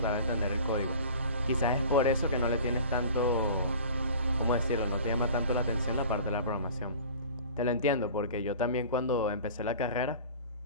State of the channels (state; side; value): inverted; both; correlation -0.42